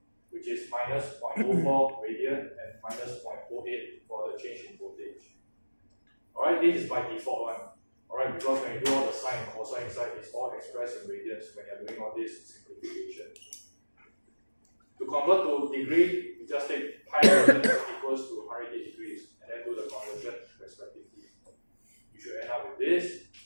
which is minus 0.04 radian and minus 0.08 for the change in voltage. Alright, this is by default one. Alright, because when you do all the sine and cosine side, it's all expressed in radians when you're doing all this simplification. To convert to degree, you just take pi radians equals to 180 degrees and then do the conversion respectively. You should end up with this.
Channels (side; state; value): both; inverted; correlation -1.00